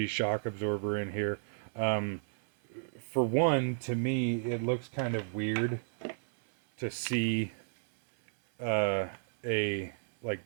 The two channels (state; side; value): silent; left; 56 dB below the other